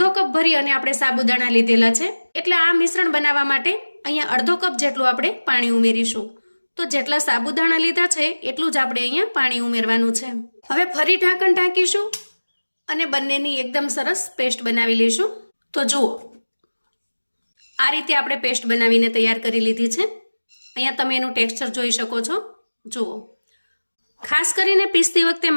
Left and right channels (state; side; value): inverted; both; correlation -1.00